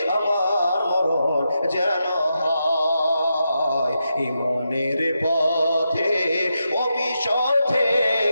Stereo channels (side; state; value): both; inverted; correlation -0.86